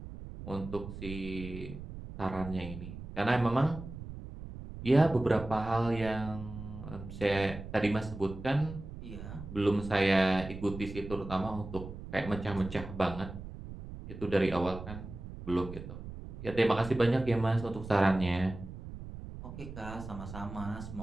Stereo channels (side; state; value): right; noise; rumble, 11 dB below the sound